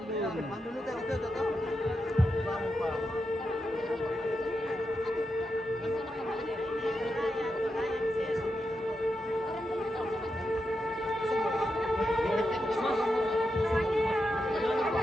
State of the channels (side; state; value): both; normal; correlation 0.87